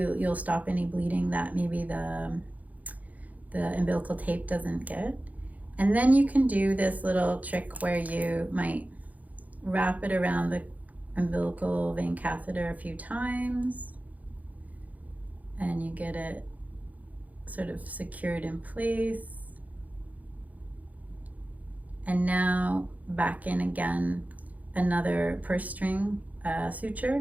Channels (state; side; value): late; left; 0.076 ms